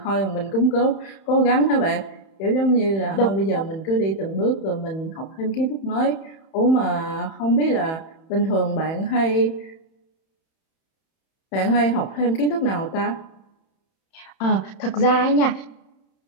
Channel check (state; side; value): late; right; 31 ms